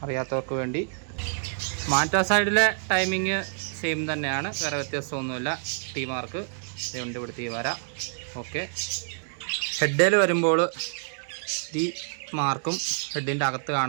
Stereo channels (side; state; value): left; silent; digital silence